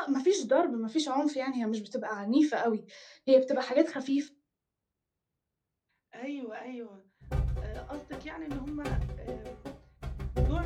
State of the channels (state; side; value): identical; both; correlation 1.00